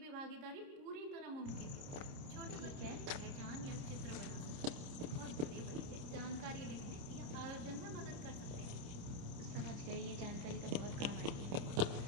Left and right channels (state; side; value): late; left; 29 ms